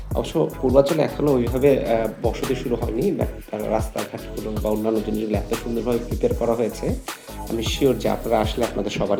অবশ্য পূর্বাচলে এখনো ওইভাবে বসতি শুরু হয়নি। বাট রাস্তাঘাটগুলো বা অন্যান্য জিনিসগুলো এত সুন্দরভাবে প্রিপেয়ার করা হয়েছে, আমি সিউর যে আপনারা আসলে আপনাদের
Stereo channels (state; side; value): identical; both; correlation 1.00